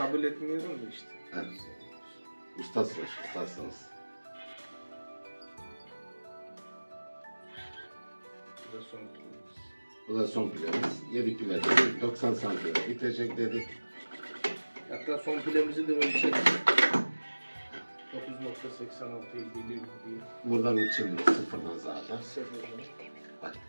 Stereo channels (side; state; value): both; inverted; correlation -1.00